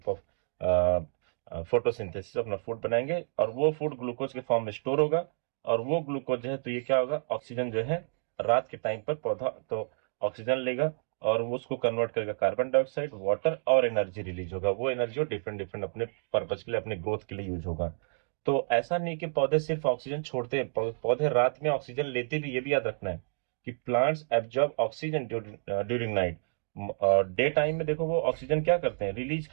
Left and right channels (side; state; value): left; silent; digital silence